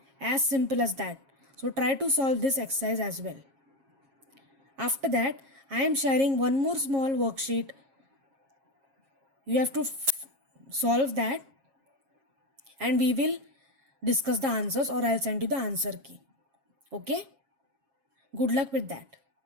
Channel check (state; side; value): late; left; 7.4 ms